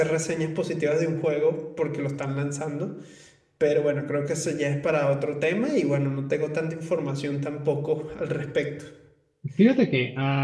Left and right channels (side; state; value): both; identical; correlation 1.00